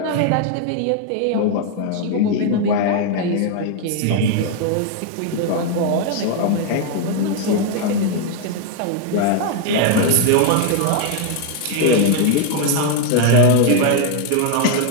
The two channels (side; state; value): both; different; correlation 0.00